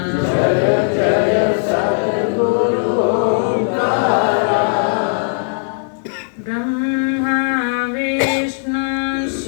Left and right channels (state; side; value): silent; right; 64 dB below the other